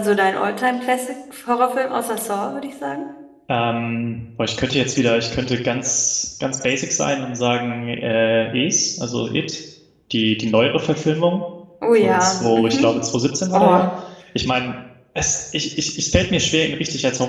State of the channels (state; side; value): identical; both; correlation 1.00